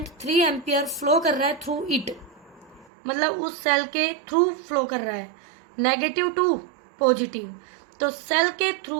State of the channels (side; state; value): left; drops out; at 2.9 s